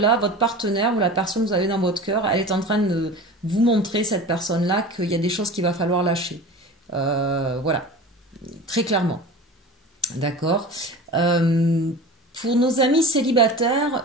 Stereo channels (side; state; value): both; normal; correlation 0.35